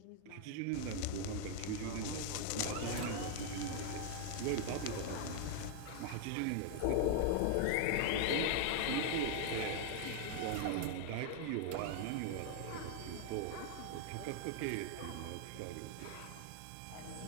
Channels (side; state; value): both; different; correlation 0.00